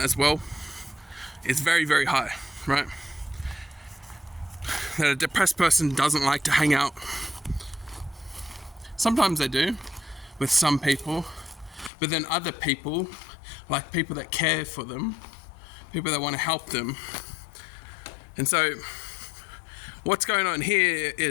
as well is very, very high, right? That a depressed person doesn't like to hang out. Sometimes they do with some people, but then other people, like people that care for them, people that want to help them. And so what's going on here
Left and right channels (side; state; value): right; drops out; at 11.9 s